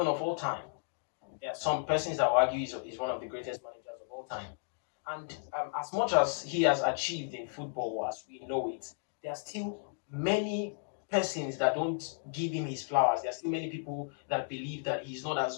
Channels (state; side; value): silent; right; digital silence